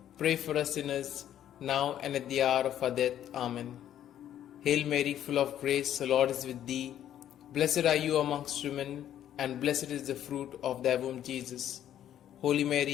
pray for us sinners, now and at the hour of our death. Amen. Hail Mary, full of grace, the Lord is with thee. Blessed are you amongst women, and blessed is the fruit of thy womb, Jesus. Holy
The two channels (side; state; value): right; quieter; 11.0 dB